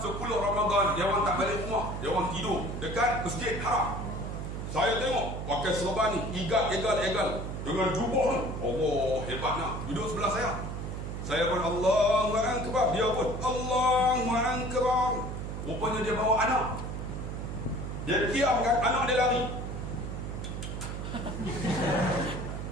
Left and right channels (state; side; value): noise; right; hum, 5 dB below the sound